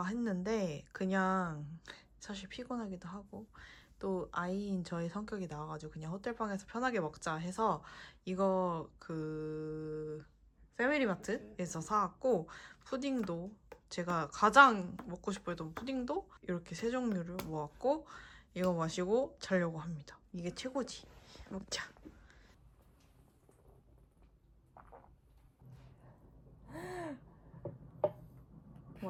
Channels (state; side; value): identical; both; correlation 1.00